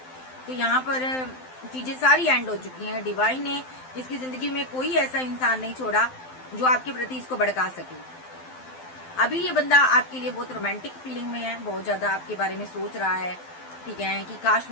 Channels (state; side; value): late; right; 12 ms